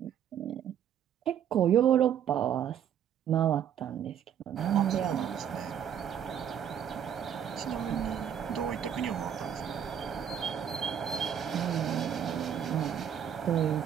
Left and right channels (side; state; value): left; quieter; 9.1 dB